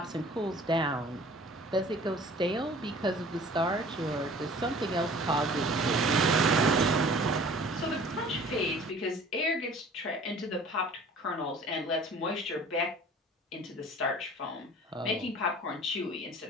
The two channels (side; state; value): both; normal; correlation 0.47